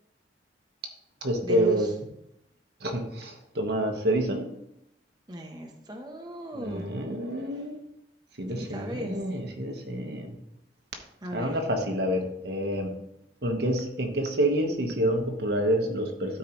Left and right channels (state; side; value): normal; both; correlation 0.37